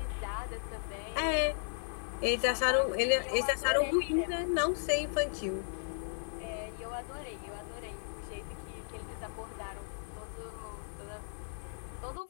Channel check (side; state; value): right; silent; digital silence